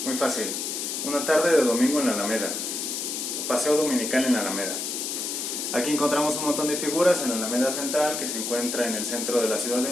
Muy fácil. Una tarde de domingo en la Alameda. Paseo dominical en la Alameda. Aquí encontramos un montón de figuras en la Alameda Central, que se encuentra en el centro de la Ciudad de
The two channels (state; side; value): noise; left; hiss, 3 dB below the sound